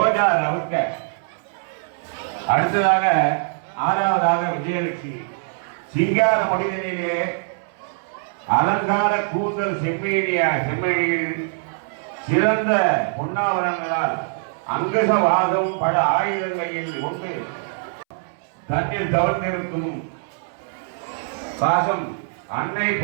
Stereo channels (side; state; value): left; silent; 64 dB below the other